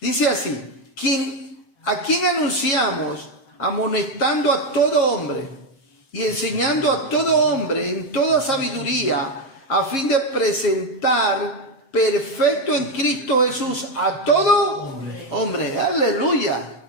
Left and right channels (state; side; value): late; right; 7.6 ms